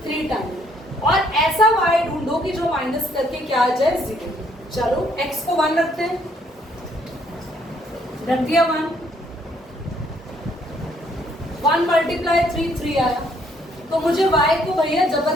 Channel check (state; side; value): normal; both; correlation 0.67